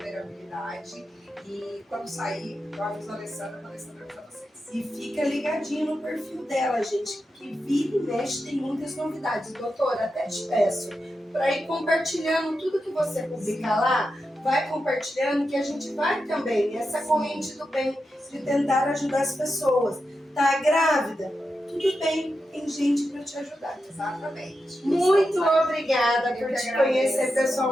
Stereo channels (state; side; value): normal; both; correlation 0.89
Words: E quando sair, eu aviso a Alessandra para avisar vocês. E fica ligadinho no perfil dela, gente, que vira e mexe tem muitas novidades. Doutora, até te peço para ir compartilhando tudo que você publicar lá, vai compartilhando que a gente vai também nessa corrente do bem de tentar ajudar as pessoas. Tá grávida? Tudo bem, tem gente para te ajudar. Exatamente. Muito obrigada por te conhecer